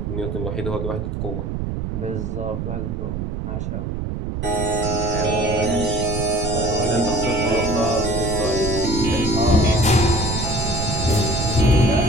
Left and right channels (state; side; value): noise; right; rumble, 4 dB below the sound